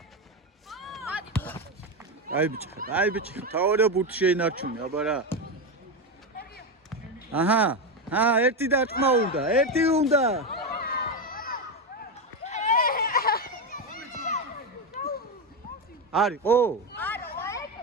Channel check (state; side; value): normal; both; correlation 0.12